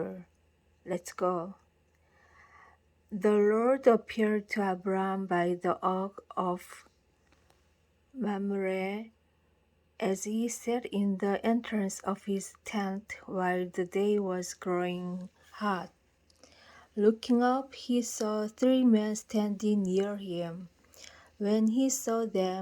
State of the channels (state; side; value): identical; both; correlation 1.00